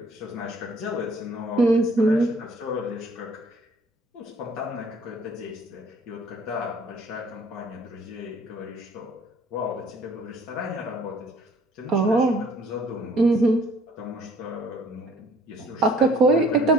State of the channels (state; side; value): normal; both; correlation 0.57